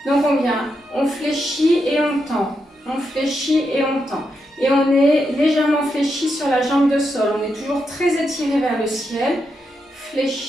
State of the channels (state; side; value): normal; both; correlation 0.84